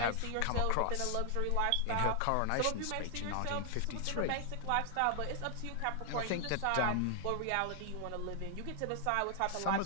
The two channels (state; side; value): different; both; correlation 0.00